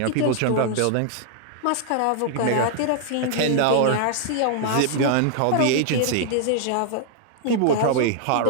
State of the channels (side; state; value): both; different; correlation -0.01